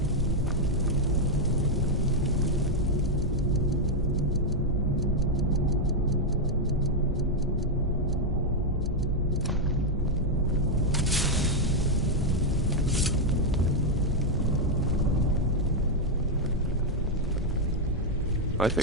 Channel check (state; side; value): normal; both; correlation 0.00